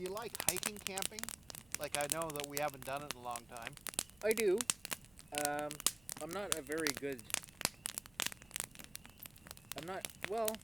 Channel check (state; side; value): noise; right; hum, 27 dB below the sound